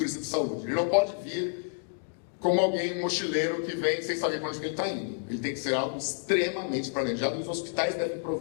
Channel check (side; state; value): right; silent; digital silence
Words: saúde. Ele não pode vir como alguém, um mochileiro que vem sem saber para onde ele está indo. Ele tem que ser algo extremamente planejado. Os hospitais devem